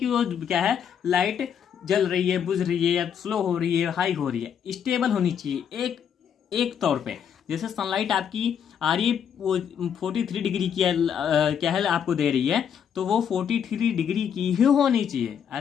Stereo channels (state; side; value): quieter; right; 8.1 dB